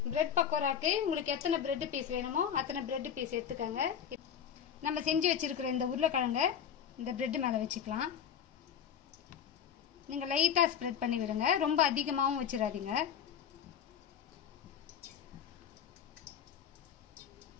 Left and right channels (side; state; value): right; quieter; 8.4 dB